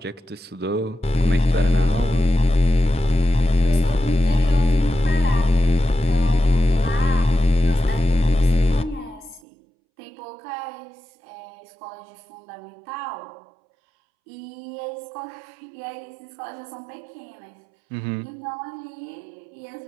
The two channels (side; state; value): left; drops out; at 9.4 s